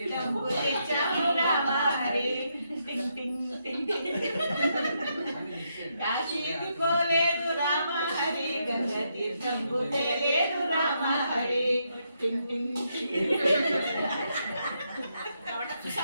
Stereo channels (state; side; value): inverted; both; correlation -0.79